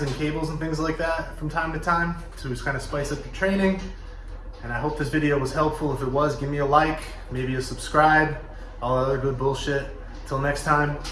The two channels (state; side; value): identical; both; correlation 1.00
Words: and cables and things like that from time to time to just kind of spice up your training. And I hope this video was helpful. If it was, give me a like, maybe a subscribe, all other good bullshit. Till next time,